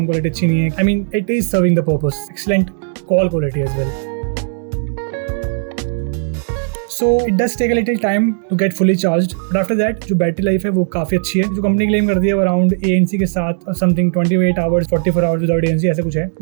क्वालिटी अच्छी नहीं है. I mean, it is serving the purpose. Excellent call quality as well. So it does take a little time to get fully charged, but after that जो बैटरी लाइफ है वो काफी अच्छी है. जो कंपनी क्लेम करती है वो अराउंड ANC के साथ something 28 hours 44 hours without ANC ऐसे कुछ है.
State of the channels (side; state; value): left; silent; digital silence